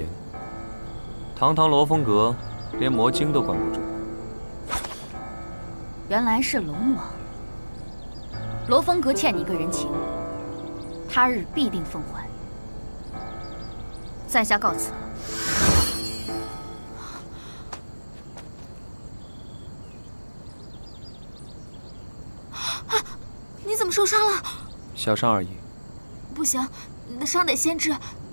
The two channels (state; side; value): inverted; both; correlation -1.00